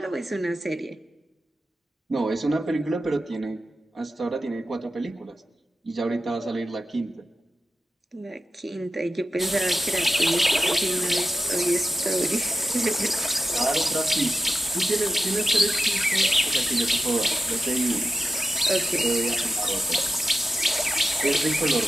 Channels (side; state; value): both; normal; correlation 0.89